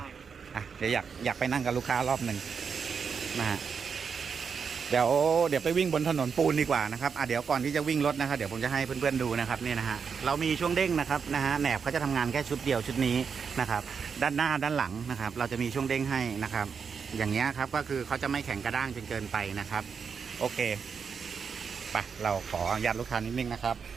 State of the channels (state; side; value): quieter; left; 6.2 dB